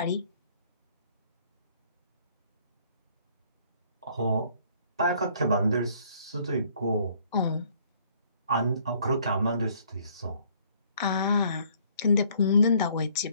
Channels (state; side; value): inverted; both; correlation -0.62